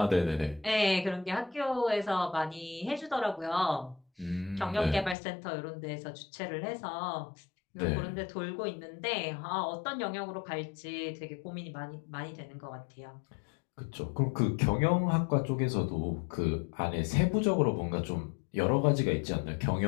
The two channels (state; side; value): drops out; right; at 5.2 s